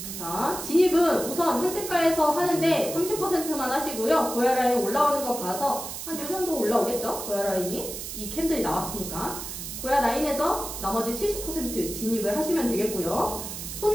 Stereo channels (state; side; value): noise; right; hiss, 8 dB below the sound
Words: 자, 진입은 우선 현재가에서 하는데 30%만 하시고요. 고야 라인 올라오는 거 봐서 한 요 정도 올라오겠죠. 고야 라인이 이 캔들이 나왔으니까 고야 라인에서 나머지 70% 진입을 하시면 되겠고요.